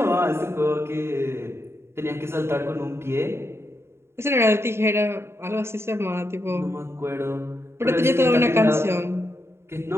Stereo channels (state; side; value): late; left; 0.12 ms